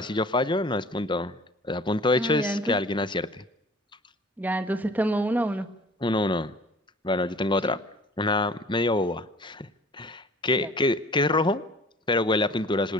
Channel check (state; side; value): normal; both; correlation 0.47